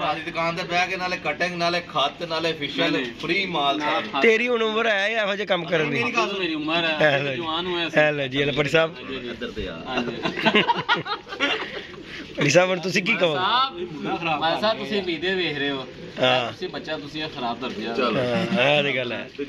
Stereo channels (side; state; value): both; identical; correlation 1.00